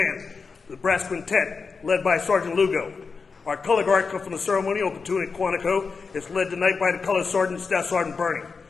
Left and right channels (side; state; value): right; quieter; 4.9 dB